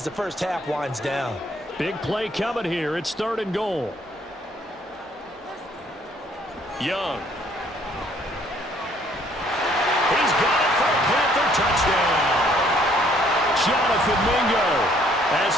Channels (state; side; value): normal; both; correlation 0.63